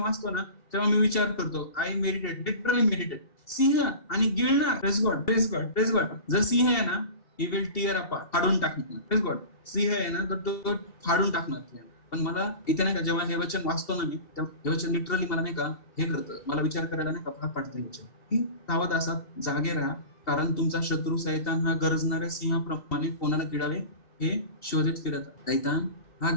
ना तेव्हा मी विचार करतो, आय मेडिटेट, लिटरली मेडिटेट. सिंह आणि गिळणार. Praise God, praise God, praise God. जर सिंह आहे ना, ही विल टिअर अपार्ट, फाडून टाकणार. Press God. सिंह आहे ना तर तो फाडून टाकणार. पण मला इथे नाही का जेव्हा हे वचन वाचतो ना मी, हे वचन लिटरली मला नाही का हे करतं, मला विचार करायला नाही का भाग पाडतं. वचन की सावध असा, जागे राहा, कारण तुमचा शत्रू सैतान हा गरजणाऱ्या सिंहाप्रमाणे कोणाला गिळावे हे शोधित फिरत. सैतान हा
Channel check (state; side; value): late; right; 2.8 ms